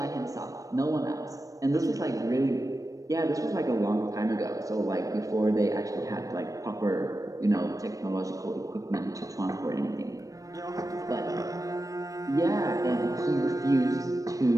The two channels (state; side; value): late; left; 0.16 ms